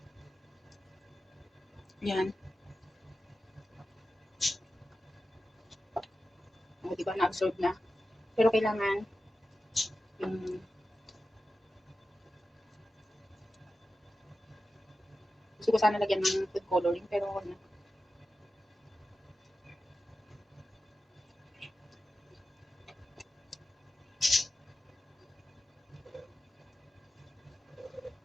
Yan. O, diba, na-absorb na. Pero kailangan yung gusto ko sana lagyan ng food coloring pero wag na.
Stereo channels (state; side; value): normal; both; correlation 0.92